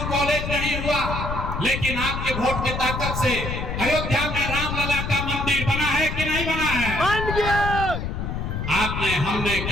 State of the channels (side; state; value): left; noise; rumble, 4 dB below the sound